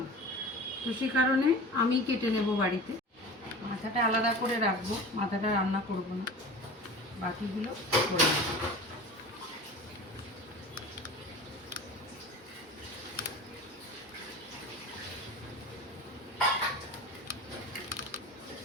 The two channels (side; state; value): both; normal; correlation 0.35